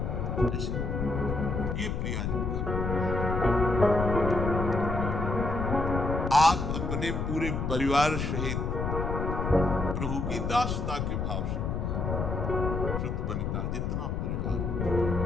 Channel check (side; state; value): left; noise; rumble, 1 dB below the sound